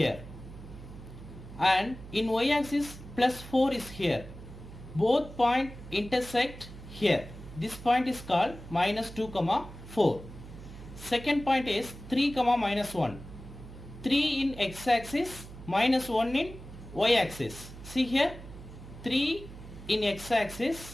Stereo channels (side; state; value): right; noise; hum, 15 dB below the sound